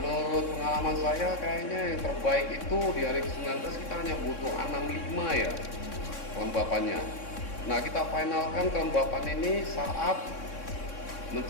pengalaman saya kayaknya yang terbaik itu di hari ke-19 kita hanya butuh 65 ya kelembapannya. Nah, kita finalkan kelembapan ini saat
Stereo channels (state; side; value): late; right; 3.6 ms